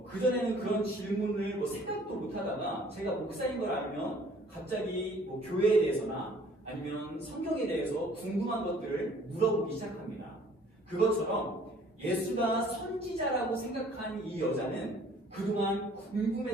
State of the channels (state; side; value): normal; both; correlation 0.55